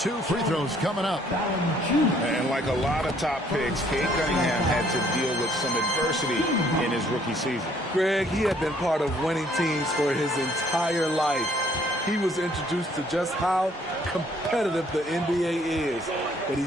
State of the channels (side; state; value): both; normal; correlation 0.63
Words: free throws coming up. And like a lot of top picks, Cade Cunningham had to deal with some adversity in his rookie season. Greg, he had been part of winning teams for his entire life. he was introduced to just how competitive the NBA is. But he